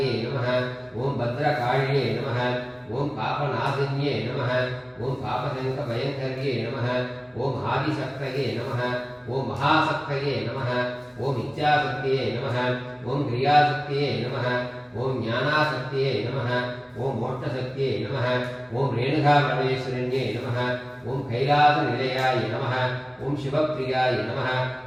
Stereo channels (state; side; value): identical; both; correlation 1.00